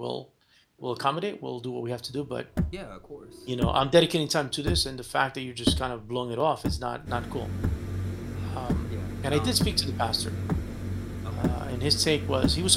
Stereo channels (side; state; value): both; identical; correlation 1.00